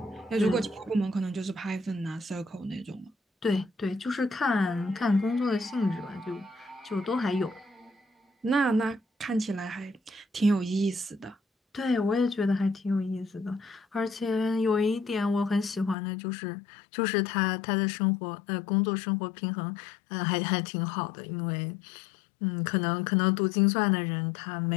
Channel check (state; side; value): drops out; right; at 16.0 s